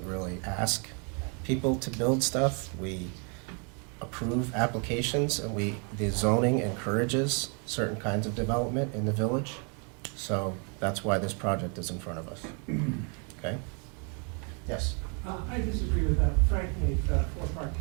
really ask people to build stuff. We approve applications, and the zoning encourages certain kinds of development in the village. So that's why this project is in front of us. Okay? Yes? I disagree with that, frankly, 4 Park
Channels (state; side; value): quieter; left; 37.2 dB